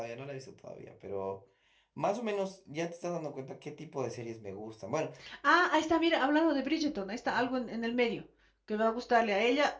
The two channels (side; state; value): both; identical; correlation 1.00